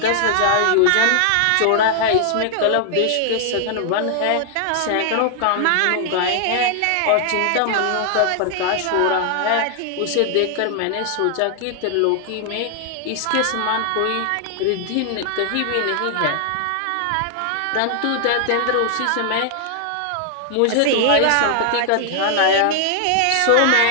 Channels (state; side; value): different; both; correlation -0.01